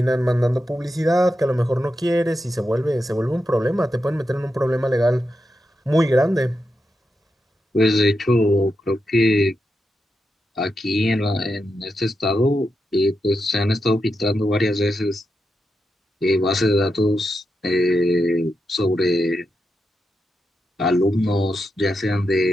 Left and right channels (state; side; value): normal; both; correlation 0.87